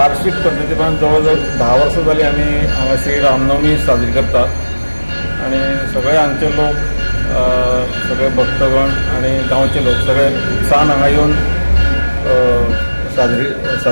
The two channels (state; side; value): inverted; both; correlation -1.00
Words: पद्धतीन जवळ 10 वर्सां जाली आमी हांगासर रामनवमी साजरी करतात आनी सगळे हांगचे लोक सगळे भक्तगण आनी गांवचे लोक सगळे उत्साहान हांगा येवन